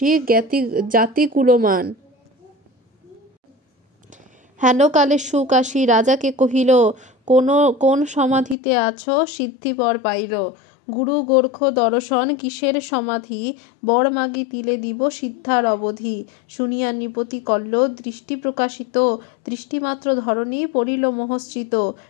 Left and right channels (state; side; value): drops out; right; at 8.6 s